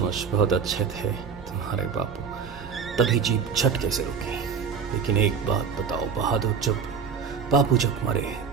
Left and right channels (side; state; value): left; quieter; 6.3 dB